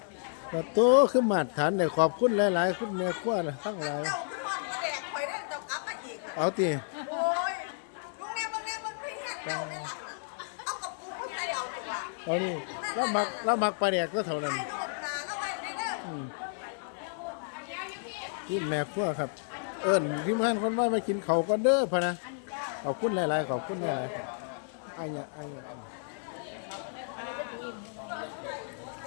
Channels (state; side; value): silent; right; digital silence